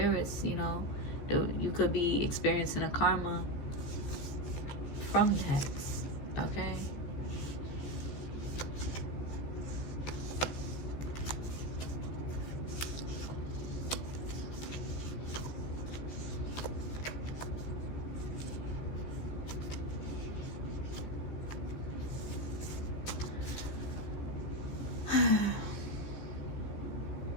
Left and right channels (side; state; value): right; late; 15 ms